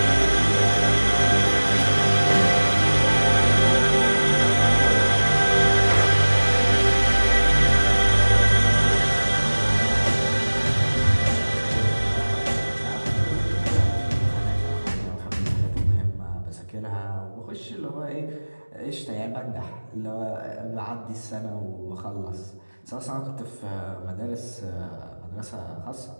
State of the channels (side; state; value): both; inverted; correlation -1.00